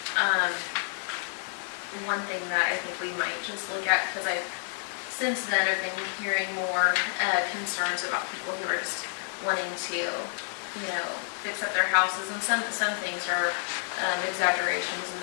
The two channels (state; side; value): silent; right; 58 dB below the other